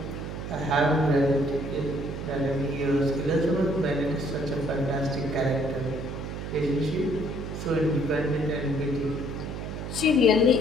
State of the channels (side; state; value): right; noise; hum, 6 dB below the sound